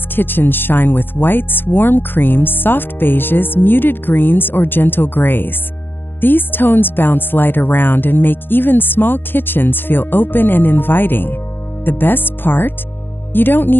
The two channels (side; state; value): right; late; 0.099 ms